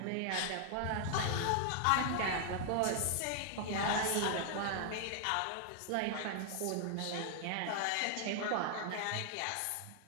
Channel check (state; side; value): different; both; correlation 0.00